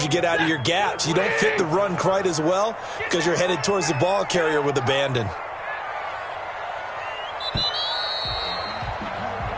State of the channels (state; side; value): identical; both; correlation 1.00